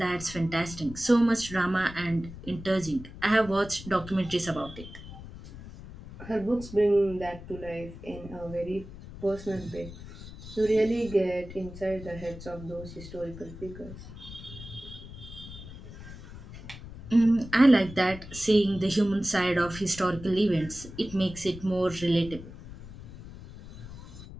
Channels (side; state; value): left; noise; rumble, 14 dB below the sound